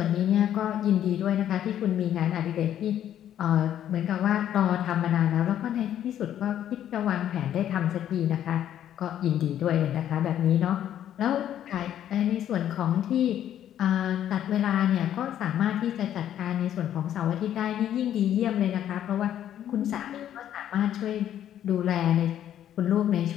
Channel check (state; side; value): quieter; right; 10.9 dB